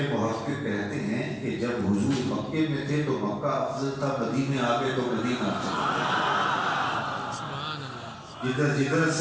محقق کہتے ہیں کہ جب حضور مکے میں تھے تو مکہ افضل تھا، مدینے آگے تو مدینہ افضل تھا. جدھر جدھر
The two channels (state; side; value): identical; both; correlation 1.00